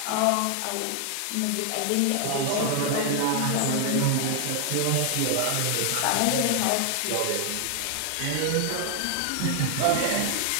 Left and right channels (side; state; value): both; different; correlation 0.00